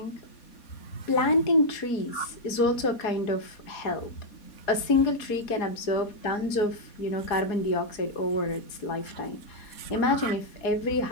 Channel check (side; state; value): right; late; 4.2 ms